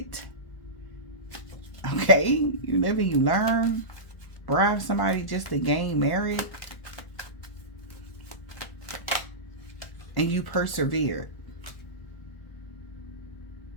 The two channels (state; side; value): late; right; 1.0 ms